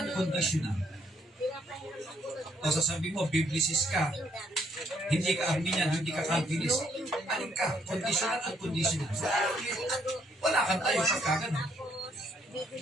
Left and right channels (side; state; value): both; normal; correlation 0.69